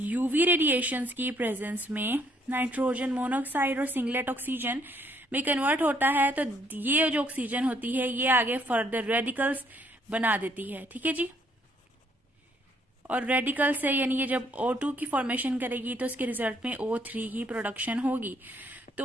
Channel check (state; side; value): normal; both; correlation 0.67